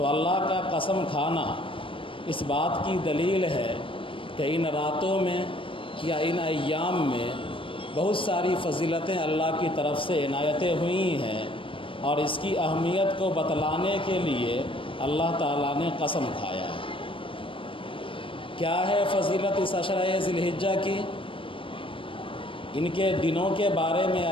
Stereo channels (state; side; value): late; right; 0.25 ms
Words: اللہ کا قسم کھانا اس بات کی دلیل ہے کہ ان راتوں میں یا ان ایام میں بہت ساری فضیلتیں اللہ کی طرف سے عنایتیں ہوئی ہیں، اور اس کی اہمیت کو بتلانے کے لیے اللہ تعالیٰ نے قسم کھایا ہے۔ کیا ہے فضیلت اس عشرہ ذی الحجہ کی؟ ان کے دنوں کے بارے میں